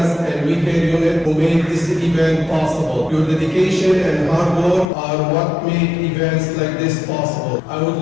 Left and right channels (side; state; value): right; drops out; at 4.9 s